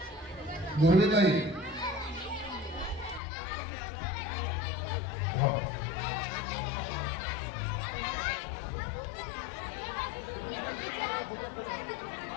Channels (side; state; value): right; drops out; at 3.2 s